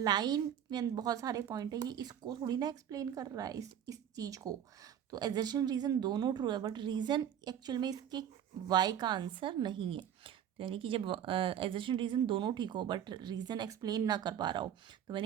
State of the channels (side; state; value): left; quieter; 9.6 dB